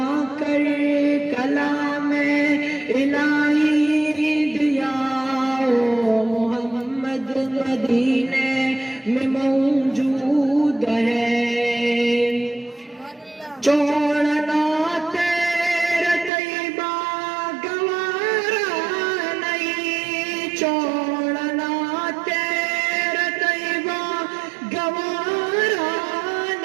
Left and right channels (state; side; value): drops out; left; at 16.3 s